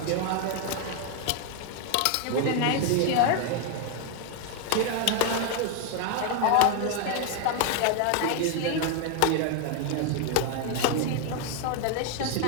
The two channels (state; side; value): different; both; correlation 0.00